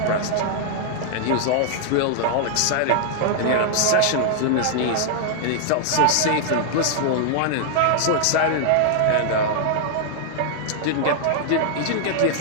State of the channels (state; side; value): different; both; correlation -0.01